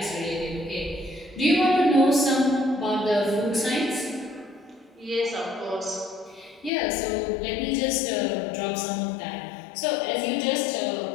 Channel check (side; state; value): right; drops out; at 6.7 s